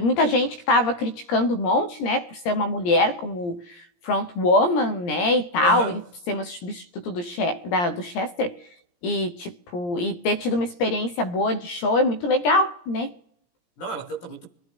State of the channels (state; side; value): late; right; 17 ms